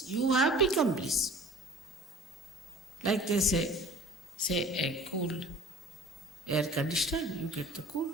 You have become bliss. Like they say a cool air conditioner, you get the cool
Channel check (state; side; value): normal; both; correlation 0.45